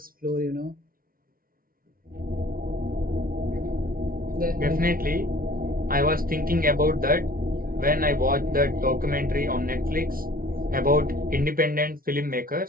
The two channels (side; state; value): left; late; 0.42 ms